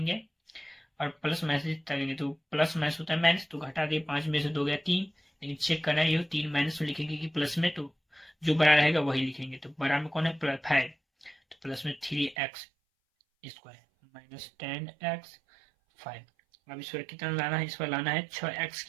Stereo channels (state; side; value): drops out; left; at 12.4 s